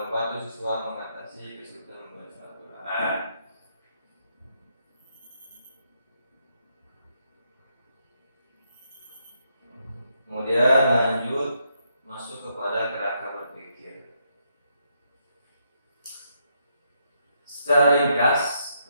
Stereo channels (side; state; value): both; inverted; correlation -0.77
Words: membantu siswa mengatasi kesulitan membaca Al-Quran. Kemudian lanjut masuk kepada kerangka berpikir. Secara ringkas,